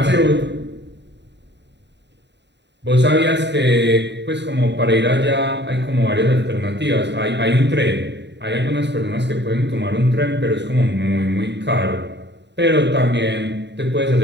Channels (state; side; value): late; left; 0.51 ms